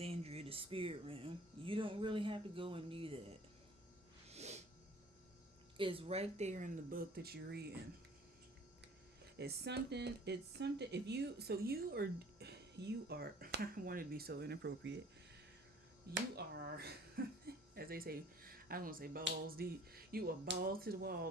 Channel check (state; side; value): normal; both; correlation 0.51